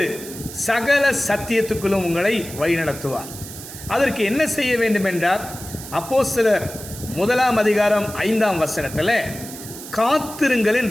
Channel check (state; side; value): noise; right; hiss, 13 dB below the sound